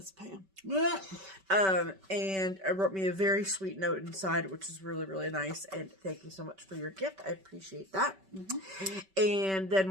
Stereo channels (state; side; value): late; left; 5.2 ms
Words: Pam. And I wrote me a very sweet note inside, which is really, really nice. And thank you so much for your gift. I appreciate that. And